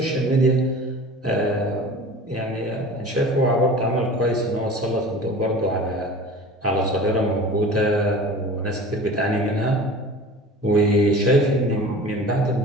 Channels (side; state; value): both; normal; correlation 0.39